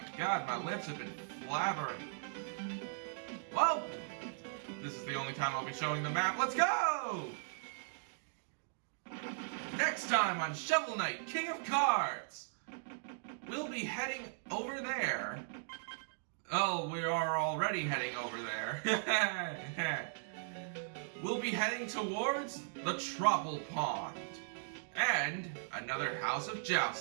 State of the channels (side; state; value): left; silent; digital silence